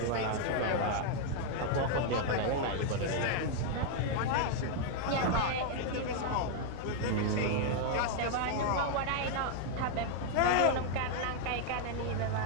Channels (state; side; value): different; both; correlation 0.00